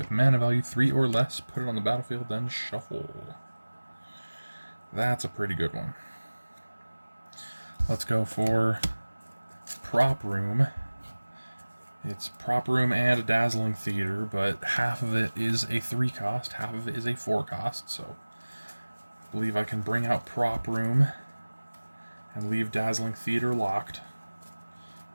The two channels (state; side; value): inverted; both; correlation -1.00